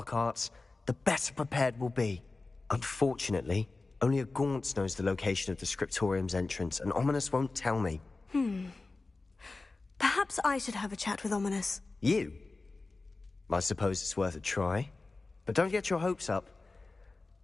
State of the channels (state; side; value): quieter; right; 3.5 dB